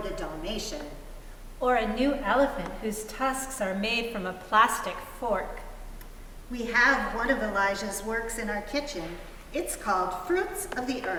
Dalmatian. Or a new elephant whose tusks are made from a plastic fork. We have one of Elijah's works in our kitchen. It's called Fruits of the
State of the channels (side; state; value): both; identical; correlation 1.00